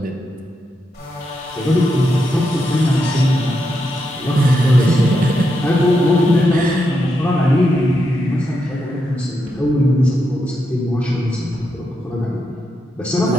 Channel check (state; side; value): normal; both; correlation 0.84